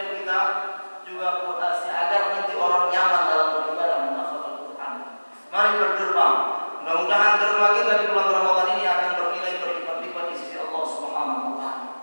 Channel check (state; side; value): inverted; both; correlation -1.00